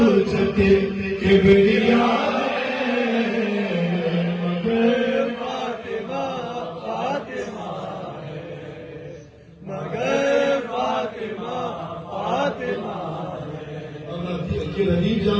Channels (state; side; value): identical; both; correlation 1.00